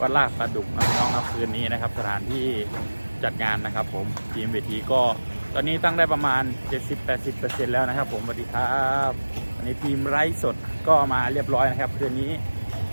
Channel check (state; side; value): inverted; both; correlation -1.00